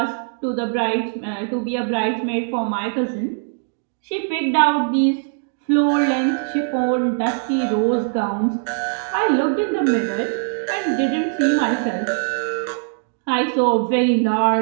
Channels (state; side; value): silent; left; digital silence